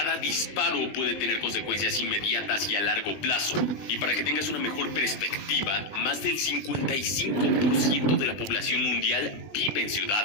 disparo puede tener consecuencias inmediatas y a largo plazo. Y para que tengas una mejor perspectiva, más del 55% de la población mundial vive en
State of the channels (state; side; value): late; right; 20 ms